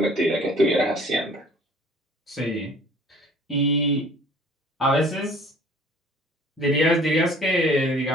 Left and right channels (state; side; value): normal; both; correlation 0.51